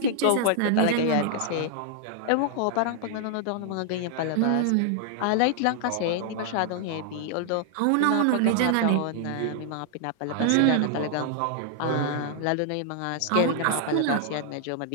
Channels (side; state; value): both; different; correlation -0.01